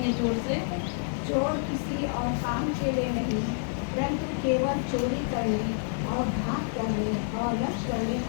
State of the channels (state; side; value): silent; right; 59 dB below the other